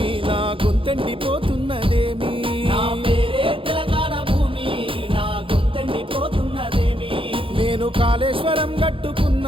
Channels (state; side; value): late; left; 0.26 ms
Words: నా గొంతెండిపోతున్నదేమి నా పేరే తెలంగాణ భూమి నా గొంతెండిపోతున్నదేమి నేను కాళేశ్వరం